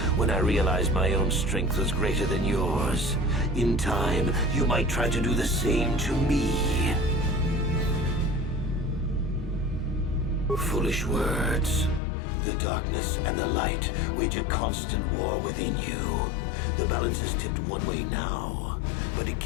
when I realized my own strength was greater than yours. In time, you might try to do the same to me. Foolish words. The darkness and the light wage a constant war within you. The balance is tipped one way now, but it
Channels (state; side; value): drops out; right; at 12.0 s